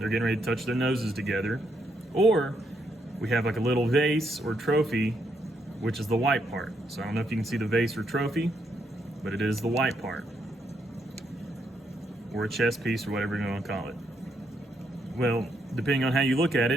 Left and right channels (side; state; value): both; normal; correlation 0.77